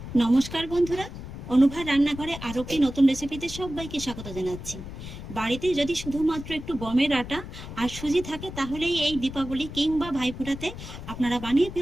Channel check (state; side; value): noise; left; rumble, 11 dB below the sound